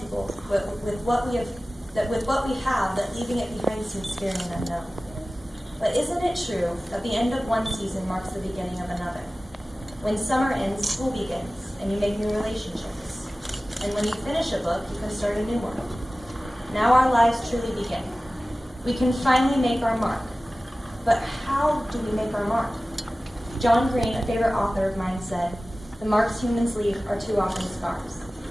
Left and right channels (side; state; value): both; normal; correlation 0.97